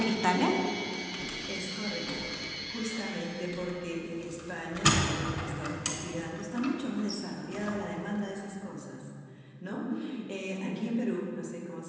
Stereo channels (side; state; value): both; identical; correlation 1.00